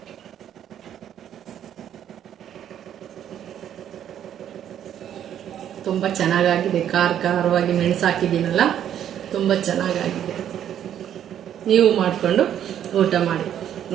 ತುಂಬ ಚೆನ್ನಾಗಾಗಿದೆ. ಖಾರವಾಗಿ ಮೆಣಸು ಹಾಕಿದ್ದೀನಲ್ಲ, ತುಂಬ ಚೆನ್ನಾಗಾಗಿದೆ. ನೀವು ಮಾಡಿಕೊಂಡು ಊಟ ಮಾಡಿ.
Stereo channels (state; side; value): quieter; left; 10.2 dB